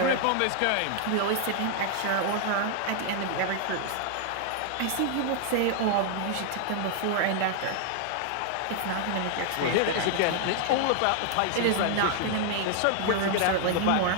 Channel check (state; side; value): different; both; correlation 0.00